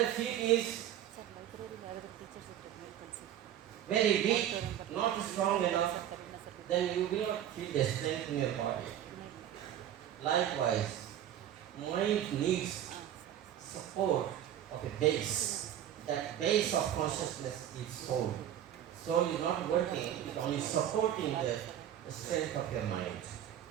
the feet is very weak, not strong enough, then you will not feel the strength in your body. Likewise, mind needs support of a base. That base of consciousness is soul. Soul is not working, it is only supporting the strength of your mind.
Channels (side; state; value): left; quieter; 11.0 dB